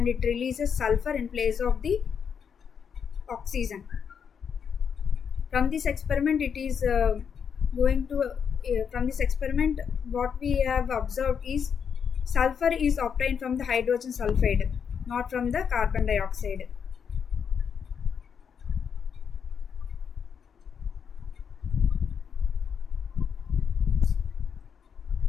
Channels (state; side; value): quieter; right; 7.1 dB